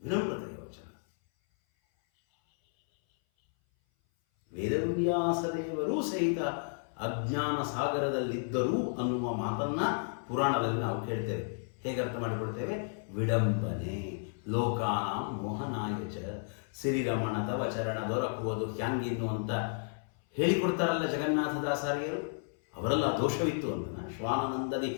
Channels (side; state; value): right; silent; 56 dB below the other